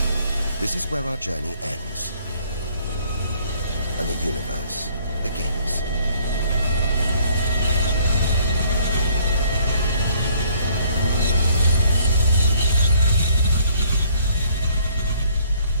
This is where our journey ends, and the universe begins.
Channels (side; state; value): both; inverted; correlation -0.61